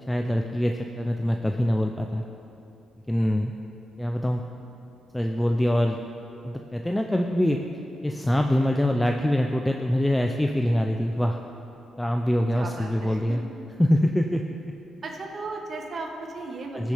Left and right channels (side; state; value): both; normal; correlation 0.96